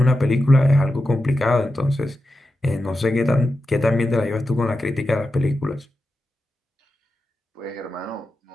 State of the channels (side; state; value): both; normal; correlation 0.90